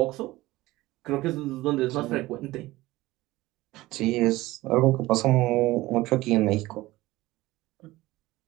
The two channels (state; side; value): quieter; left; 18.4 dB